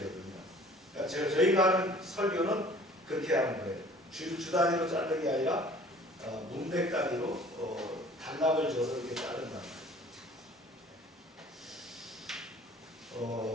그러니까 저희가 하는 설교는 그렇게 하는 거예요. 주 단위로 자르는 게 아니라 문맥 단위로 단락을 줘서 이렇게 자른다.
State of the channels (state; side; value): normal; both; correlation 0.50